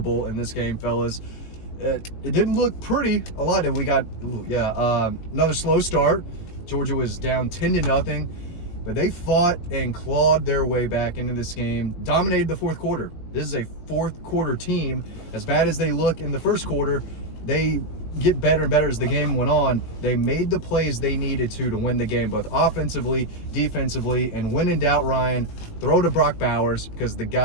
in this game, fellas. It didn't look pretty a lot. We got, another slow start. Georgia was down 10-0, but they fought and clawed their way back into this game, dominated the fourth quarter. This is a fourth quarter team. As bad as they look in the first quarter, they get better and better as the game went on. They made the plays they needed to win the game, both offensively, defensively, and when in doubt, Ryan, throw to Brock Bowers because the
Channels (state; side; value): late; right; 19 ms